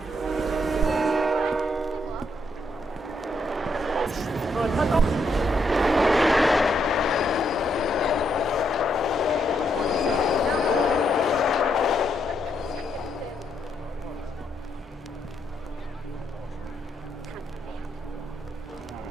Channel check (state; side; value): normal; both; correlation 0.77